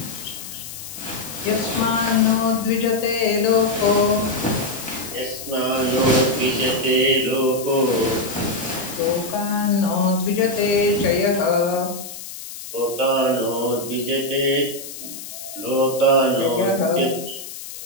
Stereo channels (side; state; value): left; noise; hiss, 11 dB below the sound